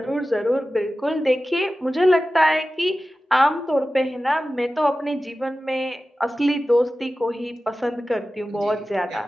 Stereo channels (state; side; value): normal; both; correlation 0.95